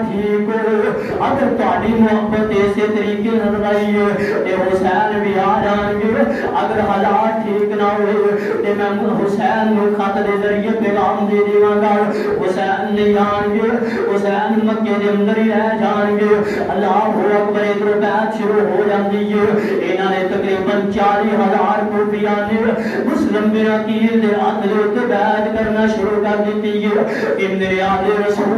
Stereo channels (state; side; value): identical; both; correlation 1.00